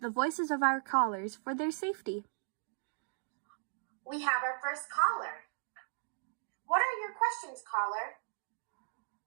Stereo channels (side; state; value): left; silent; digital silence